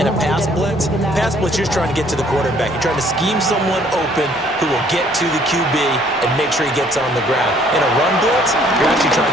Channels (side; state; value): both; normal; correlation 0.61